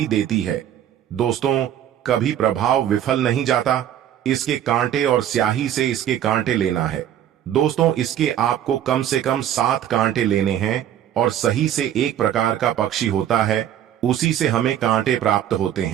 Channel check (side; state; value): left; quieter; 10.7 dB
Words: देती है। दोस्तों, कभी प्रभाव विफल नहीं जाता। इसके कांटे और स्याही से इसके कांटे लेना है। दोस्तों, इसके आपको कम से कम 7 कांटे लेने हैं, और सही से एक प्रकार का पक्षी होता है, उसी से हमें कांटे प्राप्त होते